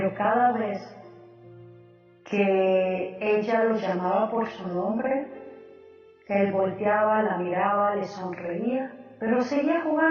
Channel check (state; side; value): identical; both; correlation 1.00